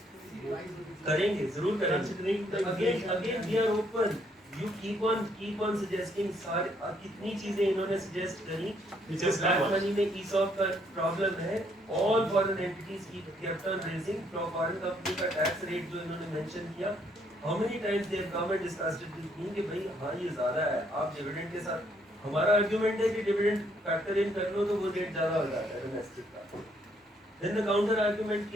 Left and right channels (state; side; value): normal; both; correlation 0.69